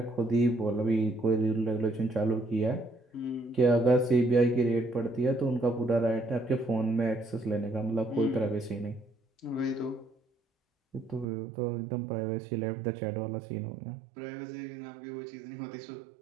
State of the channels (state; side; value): drops out; left; at 11.2 s